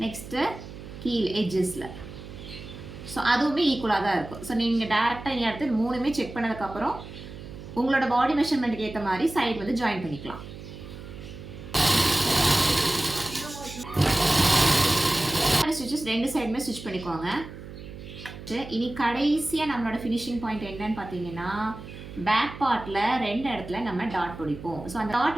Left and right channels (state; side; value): noise; right; hum, 13 dB below the sound